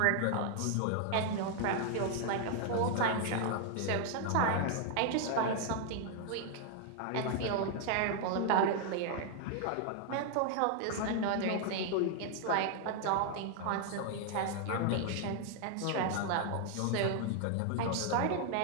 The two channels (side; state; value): both; different; correlation 0.00